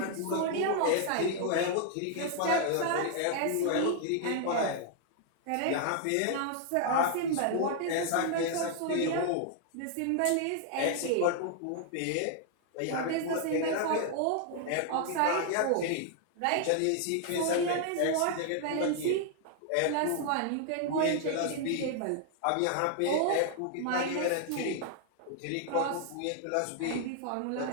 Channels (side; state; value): both; different; correlation 0.00